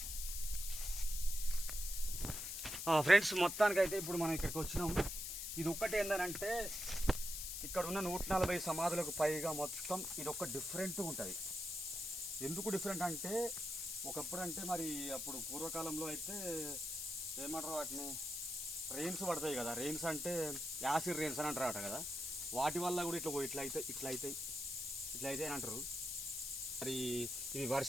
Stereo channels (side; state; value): left; noise; hiss, 4 dB below the sound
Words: ఫ్రెండ్స్ మొత్తానికైతే ఇప్పుడు మనం ఇక్కడికి వచ్చినాం. ఇది ఒక్కటి ఏంటంటే ఇక్కడ ఉన్న 140 సమాధులకు పైగా మొత్తం ఇది ఒక్క డిఫరెంట్ ఉంటుంది. ఎందుకు డిఫరెంట్ అంటే ఒకప్పుడు అంటే మరి అప్పుడు పూర్వకాలంలో అయితే ఏమంటారు వాటిని రెయిన్స్ పడతాయి కదా, రెయిన్స్ అంటే యాసిడ్ రెయిన్స్ అని అంటారట కదా, వాటి వల్ల కూడా ఇట్లా అవుతాయి అని అంటారు. మరి ఇది